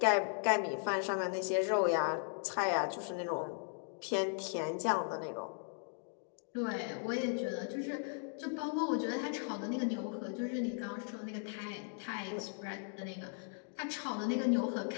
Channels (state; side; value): silent; right; 53 dB below the other